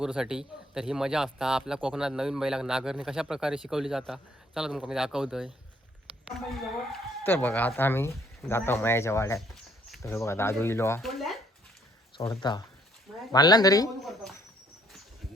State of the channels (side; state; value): both; normal; correlation 0.65